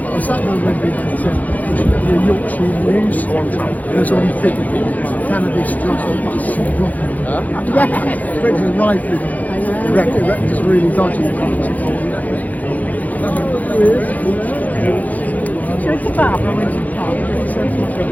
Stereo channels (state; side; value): late; right; 0.078 ms